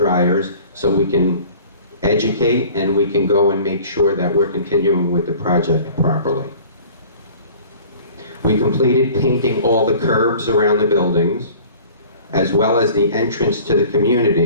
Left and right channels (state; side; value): inverted; both; correlation -0.46